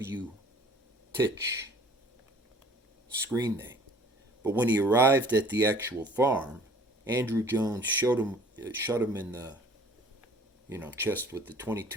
Titch screen name. But when he arrived at the actual farm, Andrew Jones shot him in the chest with the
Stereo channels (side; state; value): both; normal; correlation 0.51